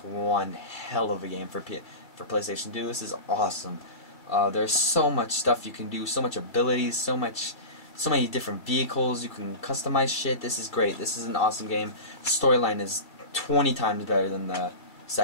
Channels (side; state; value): right; late; 2.3 ms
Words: hell of a game for PlayStation 2. This is awesome. There's so much stuff you can do, so much abilities, so many different vehicles. You can customize shit. This is great. This is an awesome game. Storyline is 20 times better than the